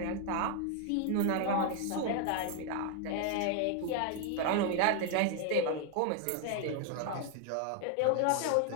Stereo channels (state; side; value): different; both; correlation 0.00